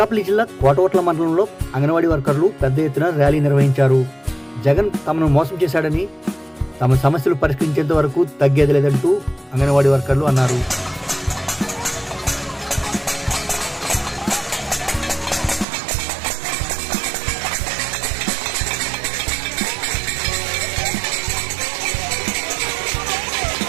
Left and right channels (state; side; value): drops out; left; at 15.7 s